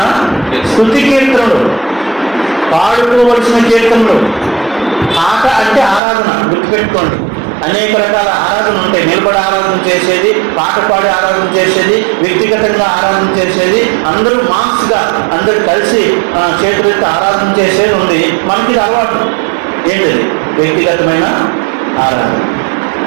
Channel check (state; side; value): drops out; left; at 6.0 s